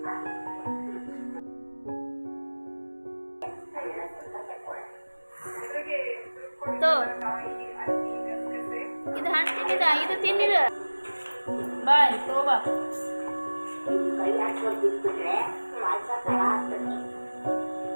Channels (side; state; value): both; inverted; correlation -1.00